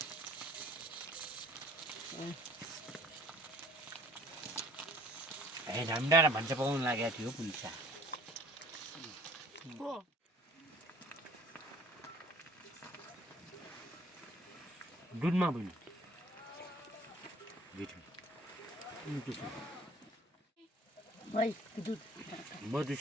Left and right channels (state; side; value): normal; both; correlation 0.53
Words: झन्डा र भान्जा पकाउन लागेको थियो पुलिस दुधमा पनि